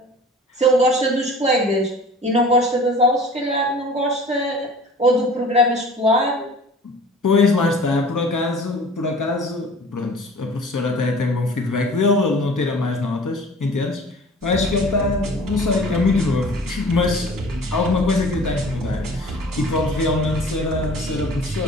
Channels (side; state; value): both; normal; correlation 0.45